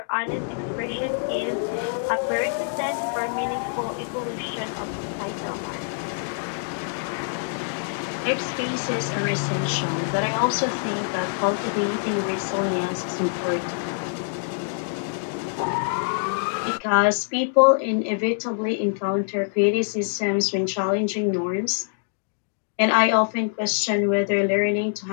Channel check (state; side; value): silent; right; digital silence